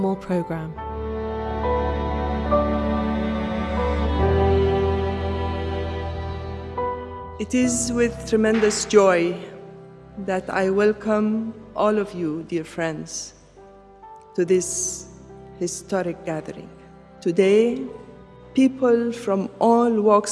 program. It is with tremendous joy that I welcome all of you, dear friends, to this historic gathering. Today, people from all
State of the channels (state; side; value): identical; both; correlation 1.00